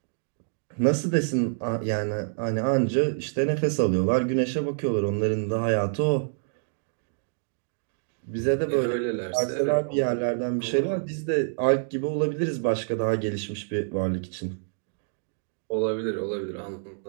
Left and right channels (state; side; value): silent; left; digital silence